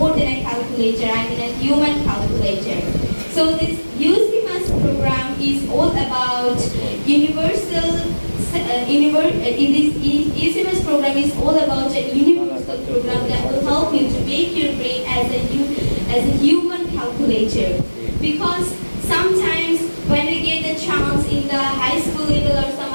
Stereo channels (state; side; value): inverted; both; correlation -1.00